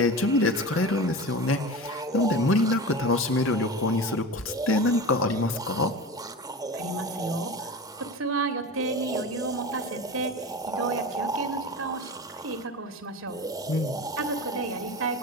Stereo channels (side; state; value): both; normal; correlation 0.30